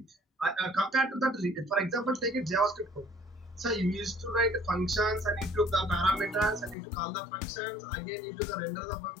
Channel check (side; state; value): right; drops out; at 6.8 s